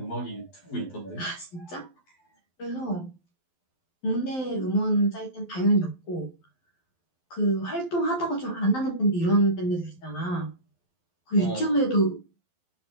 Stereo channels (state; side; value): late; right; 12 ms